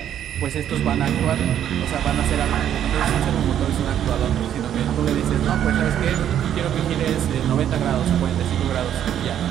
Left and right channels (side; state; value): left; quieter; 10.2 dB